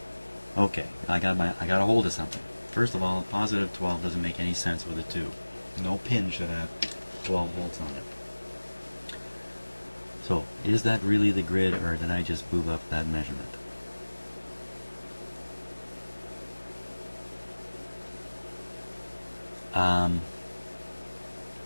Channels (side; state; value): both; inverted; correlation -1.00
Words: Okay, I got a hold of something. First of all, positive 12 doesn't make any sense with a 2. No pin should have 12 volts on it. So, is that really the grid, or did I just boob up that measurement?